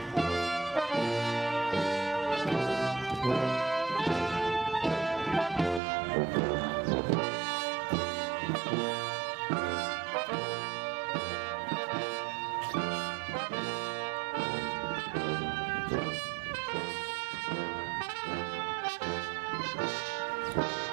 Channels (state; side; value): drops out; left; at 5.8 s